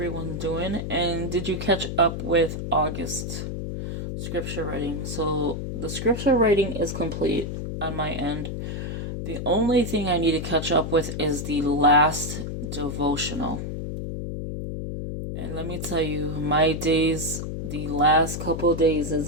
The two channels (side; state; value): left; noise; hum, 5 dB below the sound